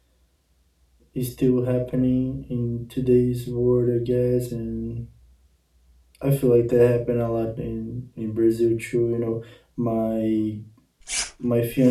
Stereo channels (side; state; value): both; identical; correlation 1.00